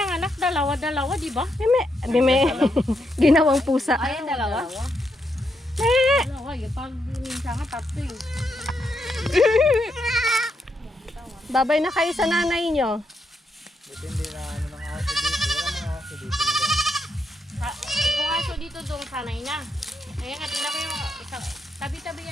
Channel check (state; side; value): normal; both; correlation 0.80